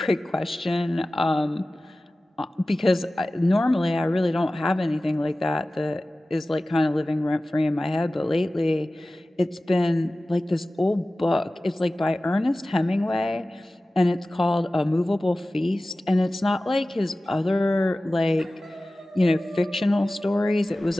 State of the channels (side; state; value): both; normal; correlation 0.97